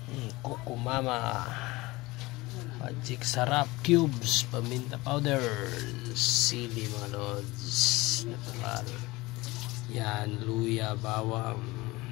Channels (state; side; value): quieter; right; 21.3 dB